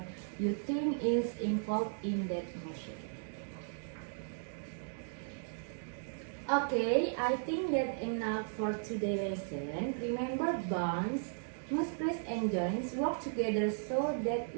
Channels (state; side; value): silent; left; digital silence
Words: you think is involved in that motion. Okay, I think that's enough for today's lesson. Remember, bones, muscles, and joints work together so that